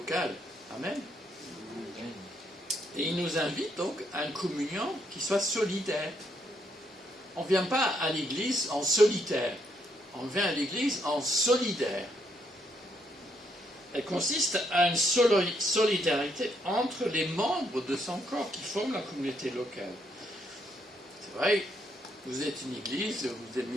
Amen. Et il nous invite donc à une communion qui soit solidaire. On ne vient pas à l'église en solitaire, on vient à l'église en solidaire. Elle consiste à une solidarité entre les membres de son corps qui forment la communauté locale. C'est vrai, vous êtes une église, vous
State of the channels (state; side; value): normal; both; correlation 0.75